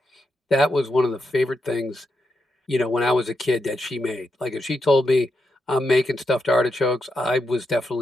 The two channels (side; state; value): both; normal; correlation 0.84